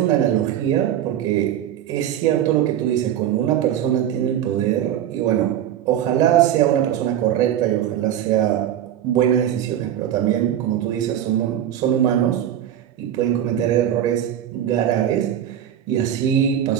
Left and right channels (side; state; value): left; quieter; 10.7 dB